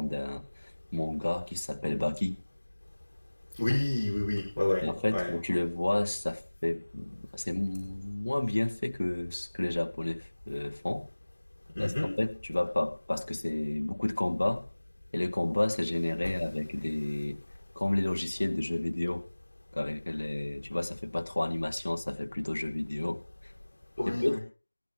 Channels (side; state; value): both; inverted; correlation -1.00